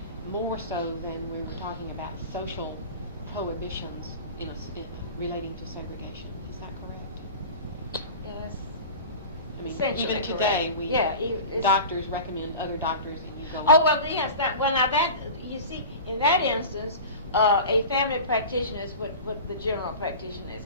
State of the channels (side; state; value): both; inverted; correlation -0.34